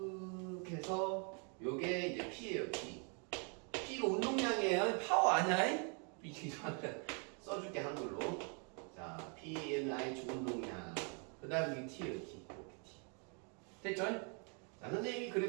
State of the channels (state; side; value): quieter; left; 37.9 dB